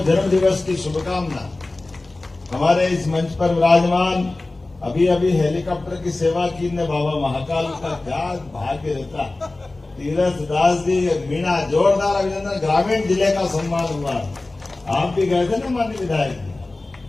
जन्म दिवस की शुभकामना। हमारे इस मंच पर विराजमान अभी अभी हेलीकॉप्टर की सेवा की ने बाबा महाकाल का क्या भाग्य रहता। तीरथ दास जी, मीणा, जोरदार अभिनंदन। ग्रामीण जिले का सम्मान हुआ। आप भी गए थे ना माननीय विधायक जी।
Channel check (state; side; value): quieter; right; 3.1 dB